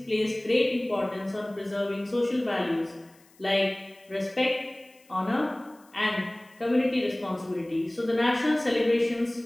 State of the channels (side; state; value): left; noise; hiss, 30 dB below the sound